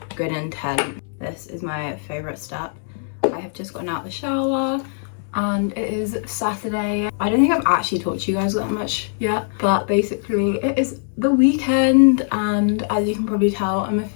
good intent. This is my favorite step. I have just gotten out of the shower and it is Saturday. I don't think I've actually talked to you guys that much yet, but basically it is the weekend, and as you can probably tell, I'm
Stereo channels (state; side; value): silent; right; digital silence